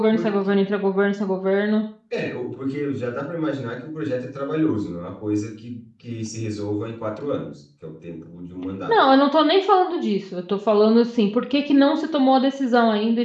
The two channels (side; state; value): both; identical; correlation 1.00